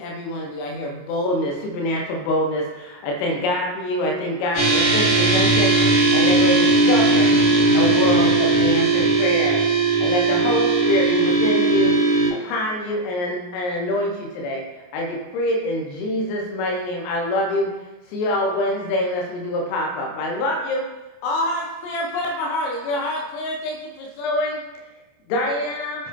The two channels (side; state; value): right; late; 28 ms